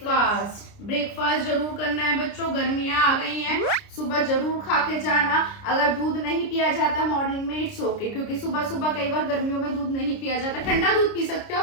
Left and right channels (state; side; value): late; right; 29 ms